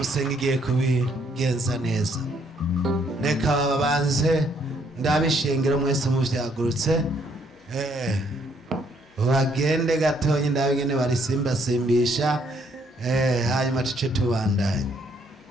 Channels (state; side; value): normal; both; correlation 0.68